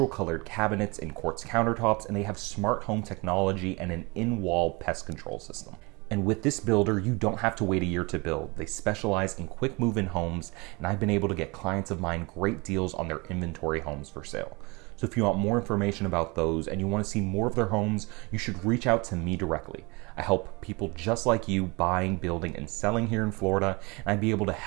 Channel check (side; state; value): left; quieter; 26.9 dB